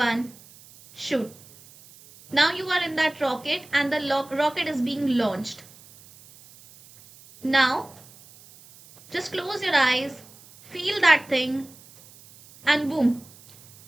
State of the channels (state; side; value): noise; right; hiss, 23 dB below the sound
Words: shoot. Now you are in that rocket and the rocket is being launched. Now just close your eyes, feel that thing, and boom,